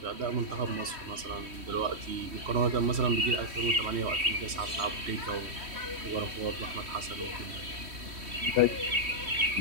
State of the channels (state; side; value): late; left; 3.1 ms